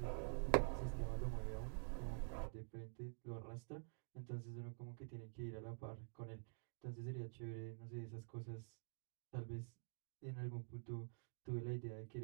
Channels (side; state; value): left; silent; digital silence